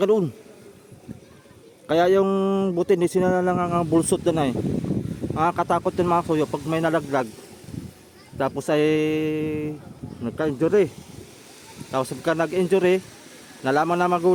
doon. Kaya yung buti, hindi sila lang ang bulsot doon ay. Nakakatakot yung mga kasuyo pag may nalaglag. Tapos ay nagka-injury. Tapos pagka nag-injury, nalaman na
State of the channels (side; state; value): both; identical; correlation 1.00